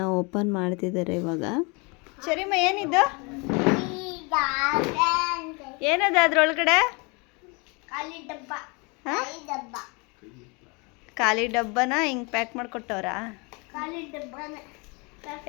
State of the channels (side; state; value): right; quieter; 30.0 dB